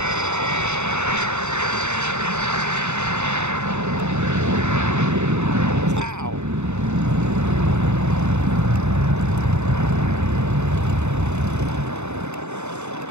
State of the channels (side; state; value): left; late; 0.82 ms